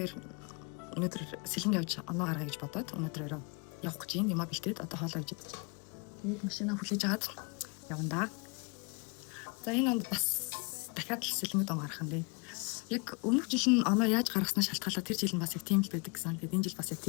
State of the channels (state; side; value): quieter; right; 31.8 dB